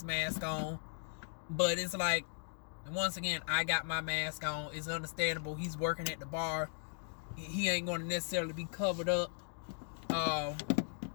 mask on, but it's like, once again, I got my mask on. It's understandable. He's working at the bar. He ain't going to necessarily be covered up or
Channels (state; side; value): silent; right; 53 dB below the other